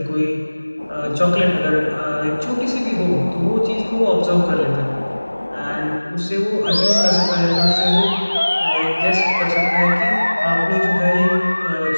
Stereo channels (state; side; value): inverted; both; correlation -1.00